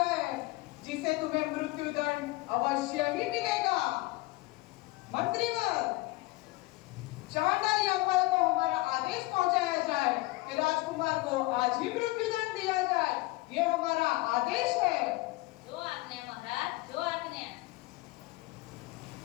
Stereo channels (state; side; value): quieter; right; 21.0 dB